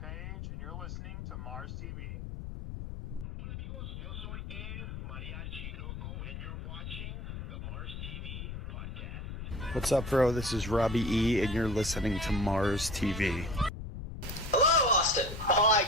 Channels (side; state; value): left; noise; rumble, 7 dB below the sound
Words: and you're listening to Mars TV. Hola amigos, yo soy El Mariachi Loco, and you're watching the Mars TV podcast. What's up, bro? This is Robbie E, and you're listening to Mars TV. Hello, Austin. Oh, I